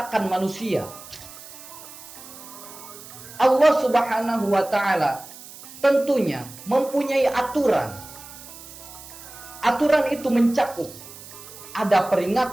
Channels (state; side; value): noise; right; hiss, 16 dB below the sound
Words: manusia. Allah subhanahu wa ta'ala tentunya mempunyai aturan. Aturan itu mencakup ada